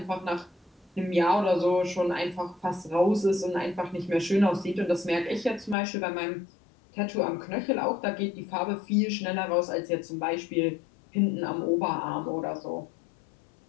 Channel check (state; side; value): drops out; right; at 5.8 s